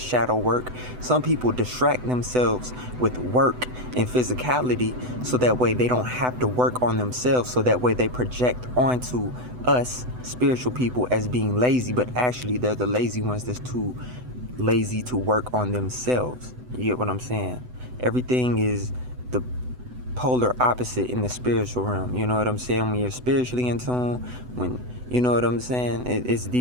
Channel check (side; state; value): left; late; 8.0 ms